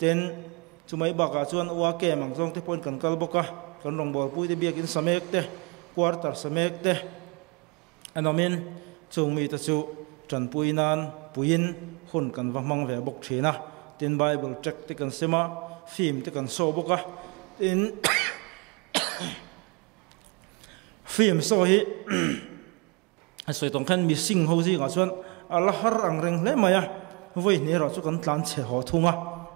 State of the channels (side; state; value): left; quieter; 30.4 dB